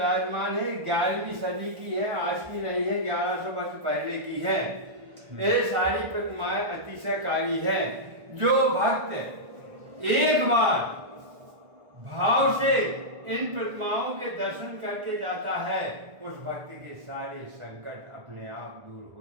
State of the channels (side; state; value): left; late; 1.4 ms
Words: है, 11वीं सदी की है, आज की नहीं है, 1100 वर्ष पहले की है। ये सारी प्रतिमाएं अतिशयकारी हैं। जो भक्त एक बार भाव से इन प्रतिमाओं के दर्शन करके जाता है, उस भक्त के सारे संकट अपने आप दूर